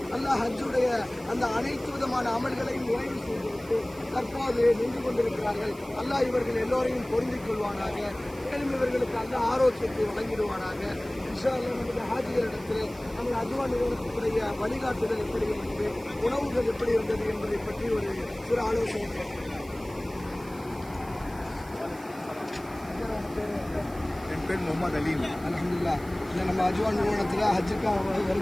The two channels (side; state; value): right; noise; hiss, 22 dB below the sound